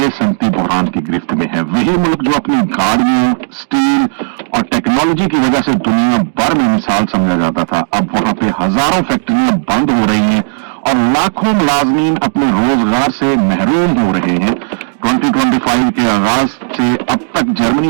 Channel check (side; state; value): left; silent; digital silence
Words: सनती बहरान की गिरफ्त में है। वही मुल्क जो अपनी गाड़ियों, स्टील और टेक्नोलॉजी की वजह से दुनिया भर में मिसाल समझा जाता था, अब वहां पे हजारों फैक्ट्रियां बंद हो रही हैं और लाखों मुलाजमीन अपने रोजगार से महरूम हो रहे हैं। 2025 के आगाज से अब तक